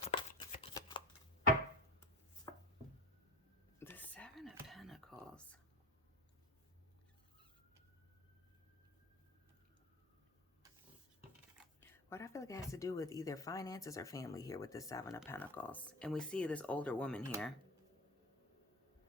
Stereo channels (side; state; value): both; normal; correlation 0.29